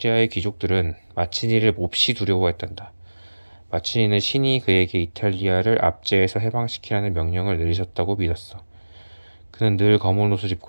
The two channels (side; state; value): both; inverted; correlation -1.00